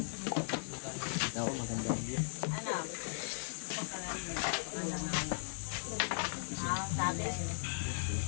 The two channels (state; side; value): silent; right; digital silence